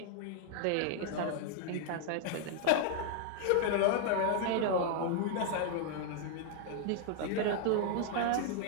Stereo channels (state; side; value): different; both; correlation -0.01